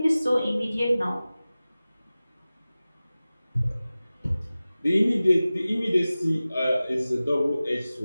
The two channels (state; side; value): inverted; both; correlation -0.97